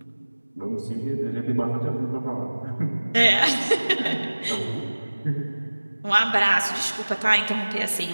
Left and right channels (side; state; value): both; inverted; correlation -1.00